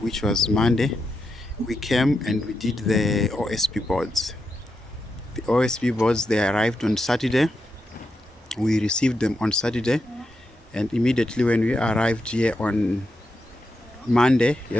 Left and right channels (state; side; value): normal; both; correlation 0.85